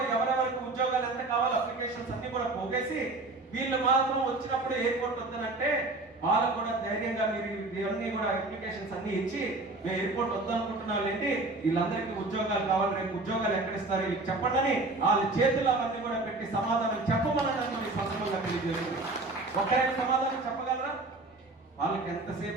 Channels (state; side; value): quieter; left; 3.1 dB